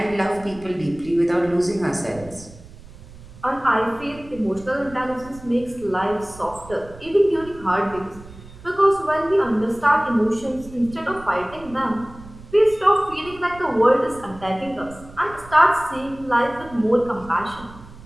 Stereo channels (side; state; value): right; noise; rumble, 19 dB below the sound